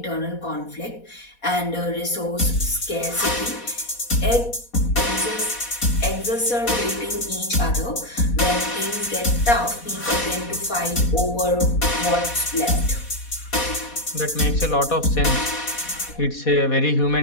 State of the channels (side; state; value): right; late; 4.2 ms